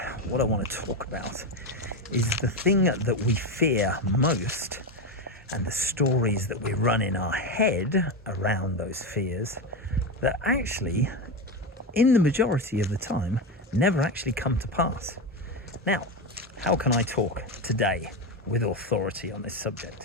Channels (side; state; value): both; normal; correlation 0.15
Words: what I want to talk about is the thing that we fear most and the stories that we run in our head around those fears that actually, in the majority of the time, never actually come to pass. Now, how can I talk today with authority on this